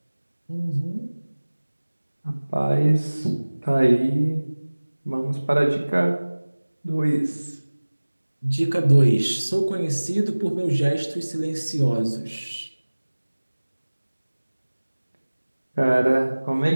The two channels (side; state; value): both; inverted; correlation -1.00